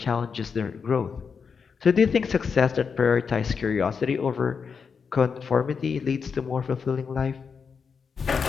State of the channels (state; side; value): quieter; right; 5.9 dB